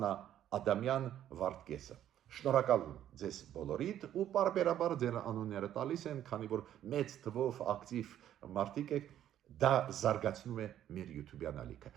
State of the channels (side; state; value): left; quieter; 11.3 dB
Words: Ադամյան, Վարդկեսը։ Շնորհակալ եմ ձեզ բոլորիդ ու բարբերաբար ձեր անունները տալիս են, քանի որ մեծ թվով ակտիվ մարդիկ եք, դա զարգացնում է մեր YouTube-յան ալիքը։